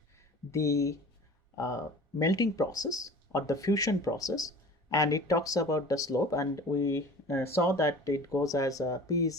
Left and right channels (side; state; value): both; normal; correlation 0.42